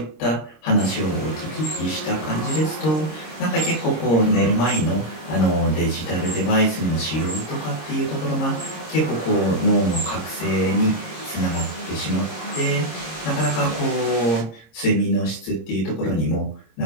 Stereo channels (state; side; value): late; right; 26 ms